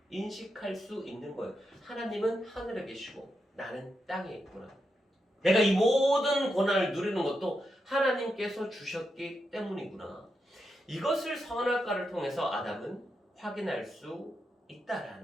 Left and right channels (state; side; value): normal; both; correlation 0.85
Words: 인식할 수 있는 거예요. 하나님은 하늘에 계시고 나는 땅에 있구나. 내가 이 모든 권한을 누리는 것도 하나님께서 주셨기 때문이구나. 이것을 선악과를 통해서 아담은 확인할 수